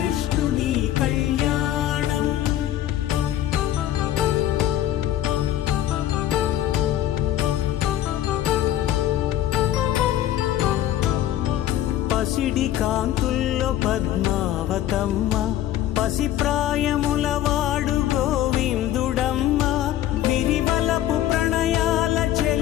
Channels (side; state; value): right; quieter; 12.6 dB